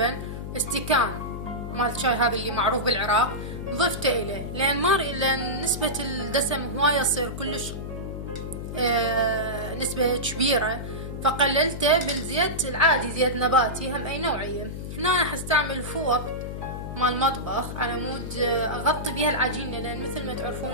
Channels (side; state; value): left; noise; hum, 7 dB below the sound